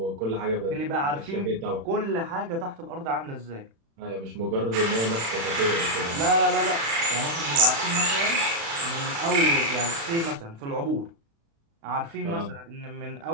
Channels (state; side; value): late; left; 36 ms